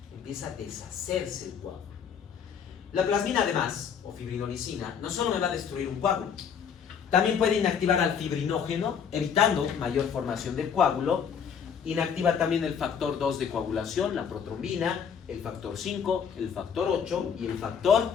empieza a deshacerse el coágulo. La plasmina además, o fibrinolicina, no solo me va a destruir un coágulo, también puede inactivar al fibrinógeno, evitando mayor formación del coágulo. Inactiva también el factor 2 de coagulación, la protrombina, el factor 5, el factor 8 y el factor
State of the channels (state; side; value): quieter; right; 7.3 dB